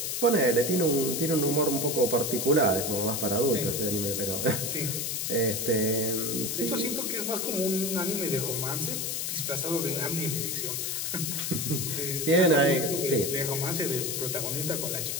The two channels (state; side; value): noise; left; hiss, 2 dB below the sound